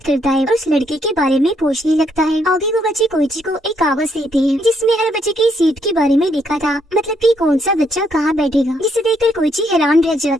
करता है और उस लड़के के बारे में पूछने लगता है। आगे वो बच्चे कोइची को एक कागज देते हैं जिसमें हर बच्चे की सीट के बारे में लिखा था, मतलब कि कौन सा बच्चा कहाँ बैठेगा। जिसे देखकर कोइची हैरान रह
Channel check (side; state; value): both; normal; correlation 0.73